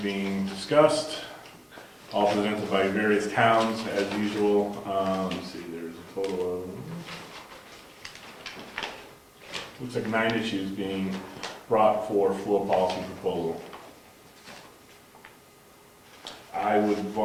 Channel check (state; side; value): identical; both; correlation 1.00